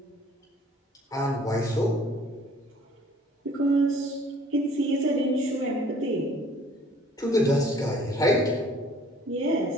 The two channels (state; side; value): normal; both; correlation 0.55